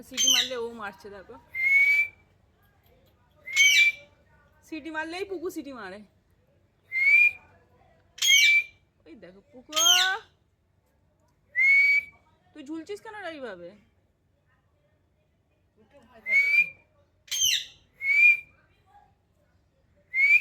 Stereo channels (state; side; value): identical; both; correlation 1.00